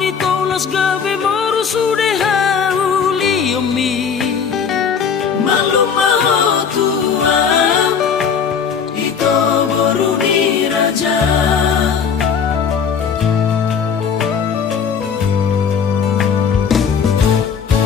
tolas gabe moru sude hauli omi maluma tua ito boruni raja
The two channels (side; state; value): right; quieter; 6.7 dB